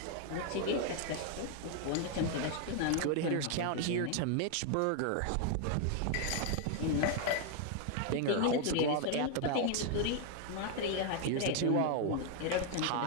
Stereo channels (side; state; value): both; different; correlation 0.00